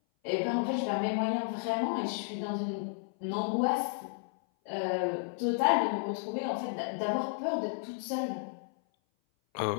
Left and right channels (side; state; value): right; silent; 56 dB below the other